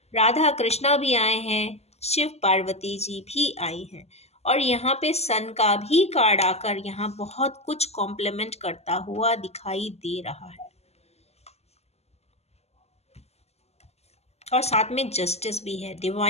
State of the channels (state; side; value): late; right; 0.30 ms